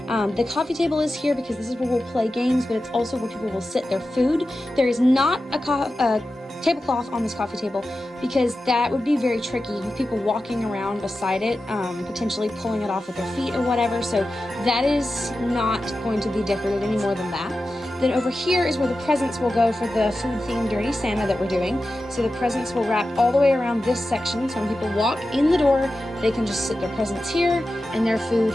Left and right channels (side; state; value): both; normal; correlation 0.93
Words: The coffee table is here because this is where we'll play games, but it's also where people will sit their food. There is not a tablecloth on this coffee table because that would be very tricky with people walking around beside it, potentially pulling it off with their feet or whatever. So that is not going to be decorated any more than that. Then over here is where the presents will go for the food-themed Dirty Santa that we're doing. So the presents will wrap all the way around this section. So when people walk in the door, they can just sit their presents here and their food